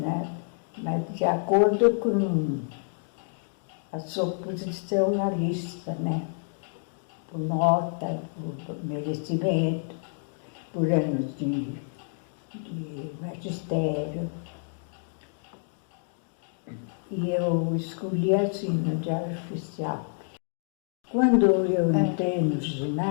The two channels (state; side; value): silent; right; 59 dB below the other